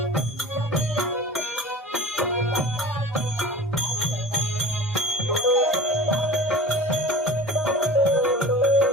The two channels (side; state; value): both; normal; correlation 0.38